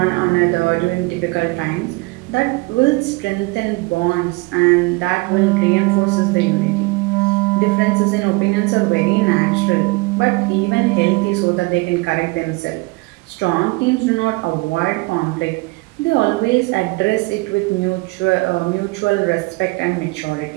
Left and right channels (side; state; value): left; quieter; 25.3 dB